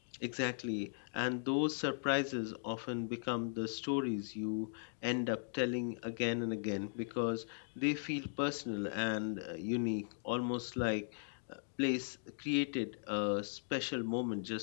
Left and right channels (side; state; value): right; silent; digital silence